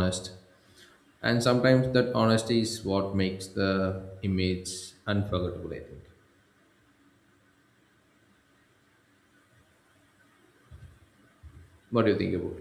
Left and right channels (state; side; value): identical; both; correlation 1.00